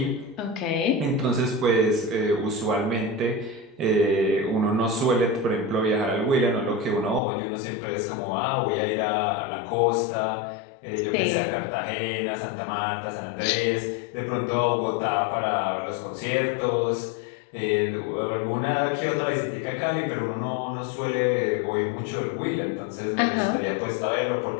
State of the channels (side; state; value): right; drops out; at 7.2 s